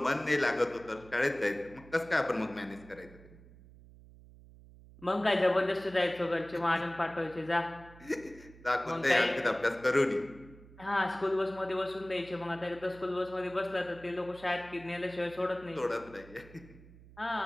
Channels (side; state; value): right; noise; hum, 21 dB below the sound